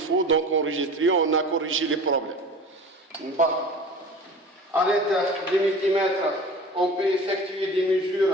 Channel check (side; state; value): both; normal; correlation 0.38